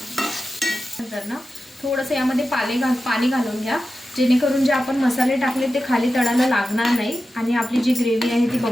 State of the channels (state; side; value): normal; both; correlation 0.92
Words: नंतर ना थोडंसं यामध्ये पाणी घालून घ्या, जेणेकरून जे आपण मसाले टाकले ते खाली तळाला लागणार नाही आणि आपली जी ग्रेव्ही आहे ती